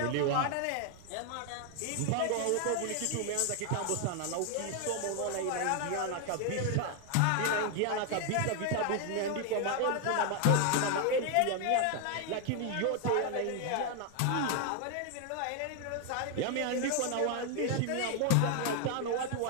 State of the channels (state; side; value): different; both; correlation 0.00